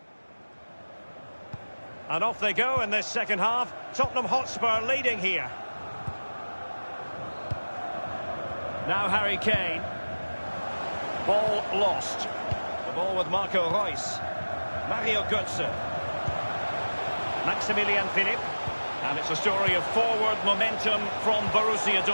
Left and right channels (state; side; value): inverted; both; correlation -1.00